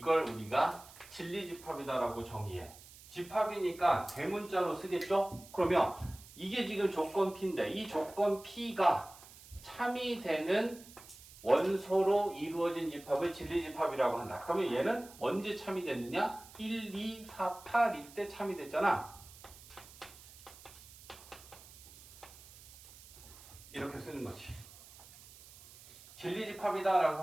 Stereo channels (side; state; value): right; noise; hiss, 19 dB below the sound